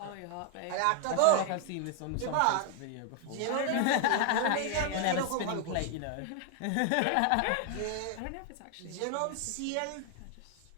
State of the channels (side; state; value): both; different; correlation 0.00